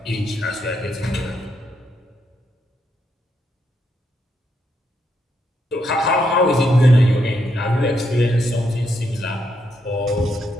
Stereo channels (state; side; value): normal; both; correlation 0.79